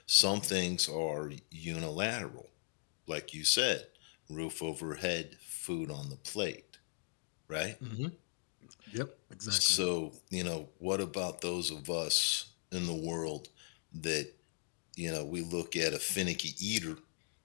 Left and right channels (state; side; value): silent; right; 52 dB below the other